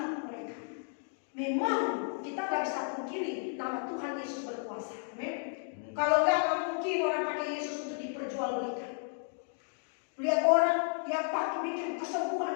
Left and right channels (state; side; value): silent; right; 56 dB below the other